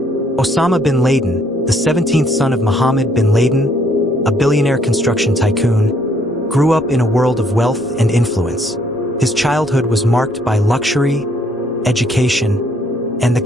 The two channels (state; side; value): normal; both; correlation 0.66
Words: bin Laden, the 17th son of Mohammed bin Laden, a billionaire construction tycoon, grew up in a world of wealth and influence. His childhood was marked by luxury, education, and the